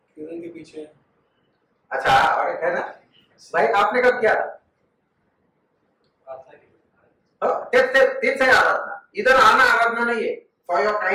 किरण के पीछे. अच्छा और है ना भाई, आपने कब किया था? तेच है आराधना. इधर आना आराधना नहीं है. फॉर योर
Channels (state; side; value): identical; both; correlation 1.00